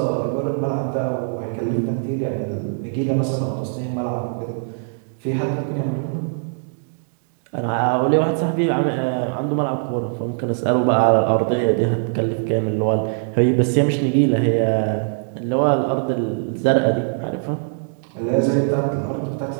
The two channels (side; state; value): left; silent; digital silence